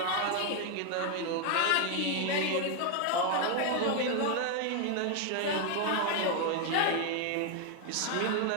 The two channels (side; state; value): both; different; correlation 0.01